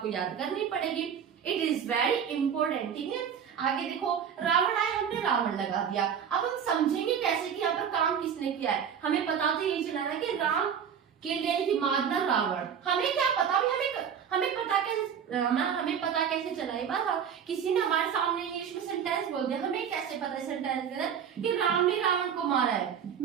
याद करनी पड़ेगी। It is very important. ठीक है, आगे देखो, रावण आए हमने रावण लगा दिया। अब हम समझेंगे कैसे कि यहाँ पर काम किसने किया है। हमें पता तो यही चला ना कि राम के लिए कि मारना रावण, हमें क्या पता, हमें पता कैसे चला? ये बात किसी ने हमारे सामने इंग्लिश में सेंटेंस बोल दिया, हमें कैसे पता सेंटेंस के अंदर कि राम ने रावण को मारा है?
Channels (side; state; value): left; quieter; 7.9 dB